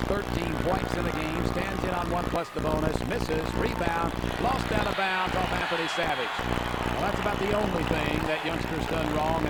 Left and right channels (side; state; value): both; identical; correlation 1.00